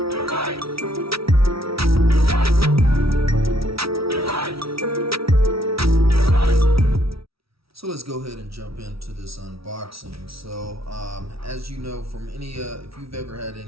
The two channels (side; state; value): left; late; 0.76 ms